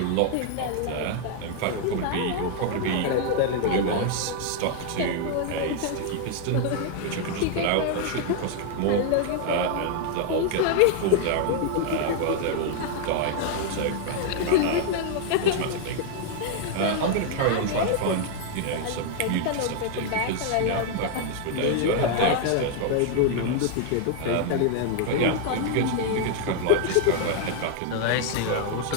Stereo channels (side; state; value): both; different; correlation 0.00